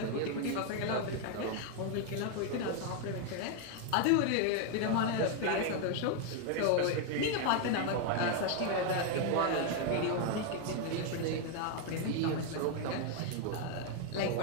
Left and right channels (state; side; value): different; both; correlation 0.00